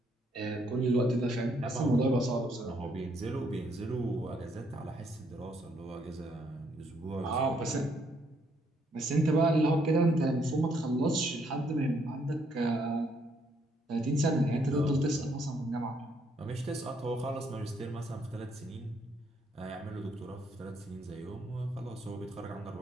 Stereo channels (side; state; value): both; normal; correlation 0.71